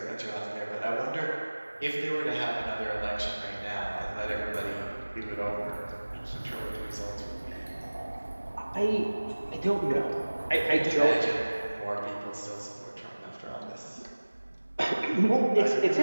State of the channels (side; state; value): both; inverted; correlation -1.00